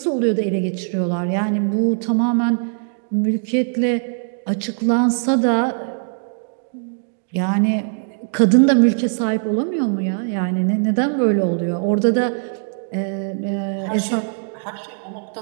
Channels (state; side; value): silent; left; digital silence